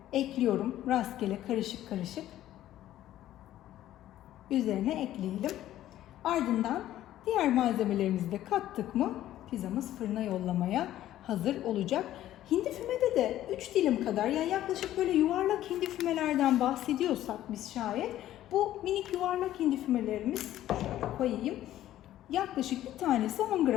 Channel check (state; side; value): quieter; right; 13.2 dB